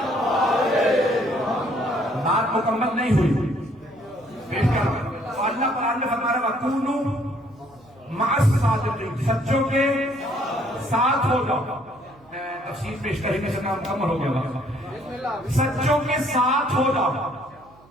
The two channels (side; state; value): right; noise; hum, 28 dB below the sound